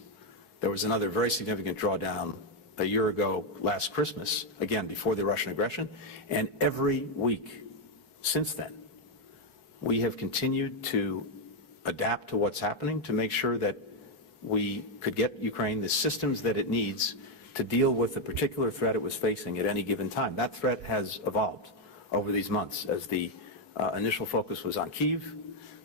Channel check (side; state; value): right; late; 14 ms